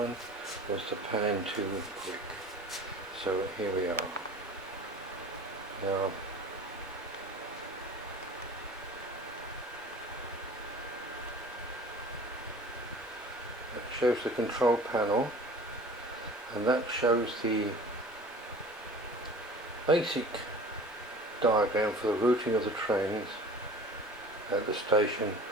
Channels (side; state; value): both; normal; correlation 0.42